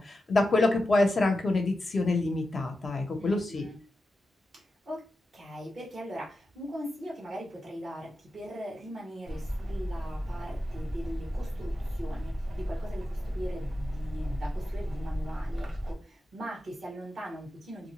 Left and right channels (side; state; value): both; normal; correlation 0.91